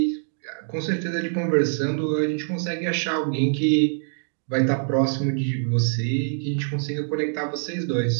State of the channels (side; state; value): left; silent; digital silence